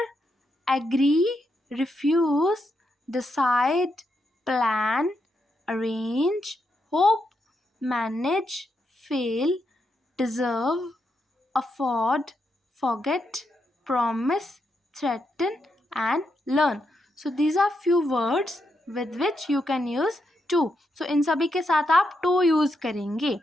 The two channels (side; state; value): both; normal; correlation 0.82